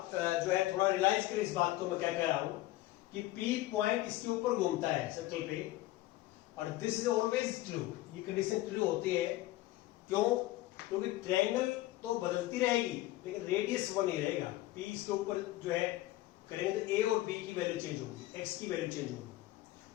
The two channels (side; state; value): right; quieter; 16.7 dB